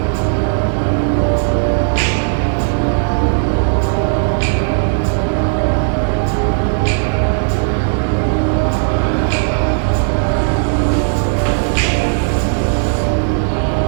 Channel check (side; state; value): left; silent; digital silence